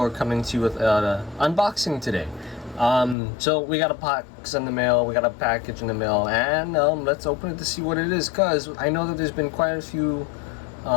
coming to you with an unboxing today. So we got a box in the mail, we got a package in the mail, and let's open it to see what it is, because I know that there's been quite a few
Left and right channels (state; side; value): drops out; right; at 3.2 s